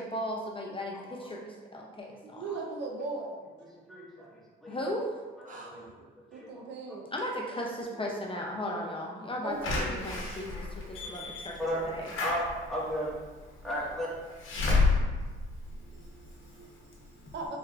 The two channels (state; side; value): normal; both; correlation 0.50